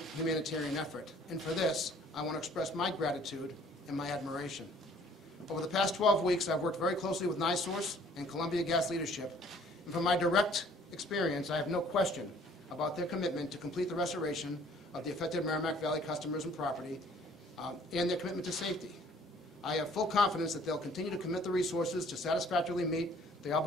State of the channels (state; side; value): normal; both; correlation 0.57